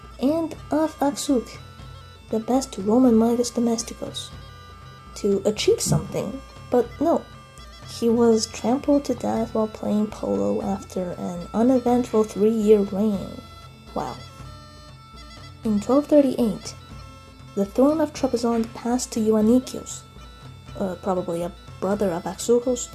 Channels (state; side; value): identical; both; correlation 1.00